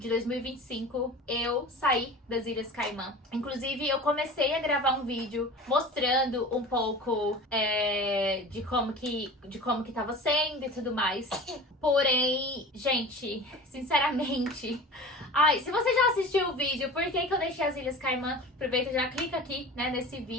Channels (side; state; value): both; normal; correlation 0.37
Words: 2025, eu saí das Ilhas Caimã. Inclusive, eu comecei a gravar um vídeo mostrando um pouco de como que tava sendo e tudo mais. Porém, gente, sinceramente... Ai, se você já assistiu o vídeo, por que eu deixei as Ilhas Caimã? Aproveita e já clica aqui, né, nesse